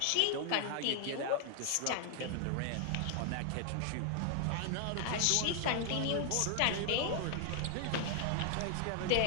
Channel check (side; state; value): both; different; correlation 0.00